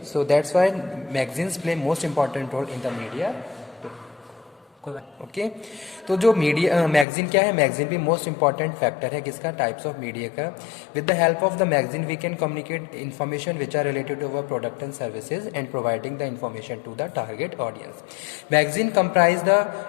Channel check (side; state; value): right; drops out; at 7.1 s